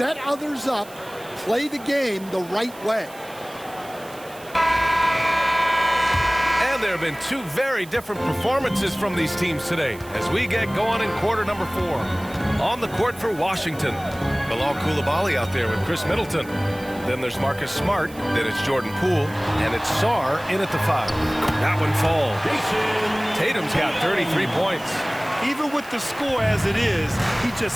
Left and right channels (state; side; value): noise; right; hiss, 21 dB below the sound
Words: others up, play the game the right way. And there have been 2 very different performances from these teams today as we get going in quarter number 4. On the court for Washington, Bilal Coulibaly out there with Chris Middleton. Then there's Marcus Smart, then it's Jordan Poole, and it's Sarr in at the 5. That one falls. Tatum's got 33 points. Even with the score as it is, he